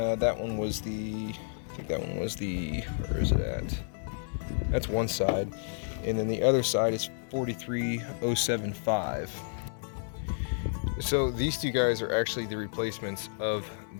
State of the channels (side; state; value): right; silent; 57 dB below the other